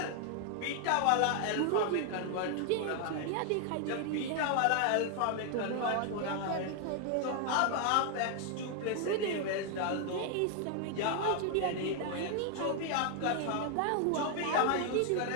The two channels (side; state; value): both; different; correlation 0.00